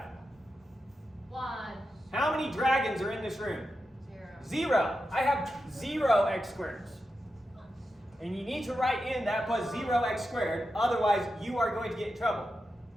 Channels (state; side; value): normal; both; correlation 0.89